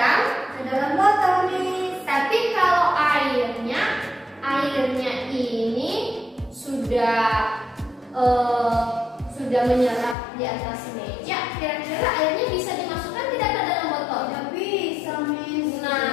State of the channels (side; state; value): right; drops out; at 10.2 s